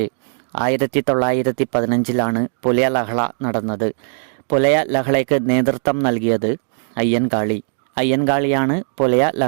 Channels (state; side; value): silent; left; digital silence